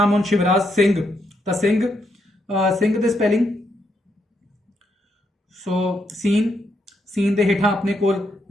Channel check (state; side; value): normal; both; correlation 0.78